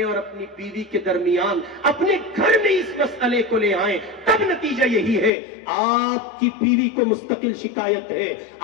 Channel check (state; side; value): drops out; right; at 5.3 s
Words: اور اپنی بیوی کے درمیان اپنے گھر میں اس مسئلے کو لے آئیں تب نتیجہ یہی ہے. آپ کی بیوی کو مستقل شکایت ہے,